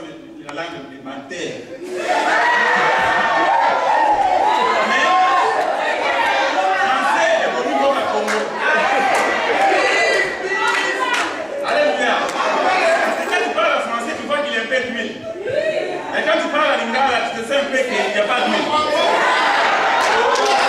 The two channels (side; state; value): both; identical; correlation 1.00